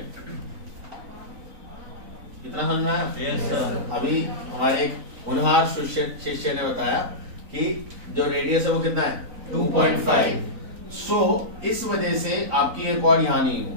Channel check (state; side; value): late; left; 3.9 ms